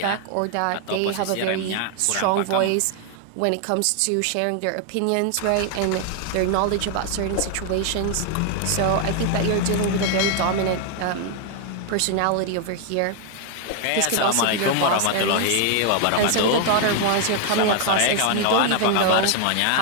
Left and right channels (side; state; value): both; different; correlation 0.00